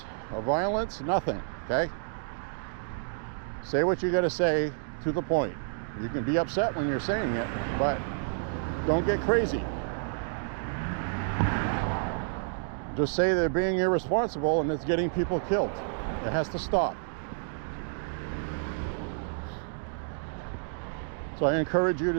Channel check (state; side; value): silent; left; digital silence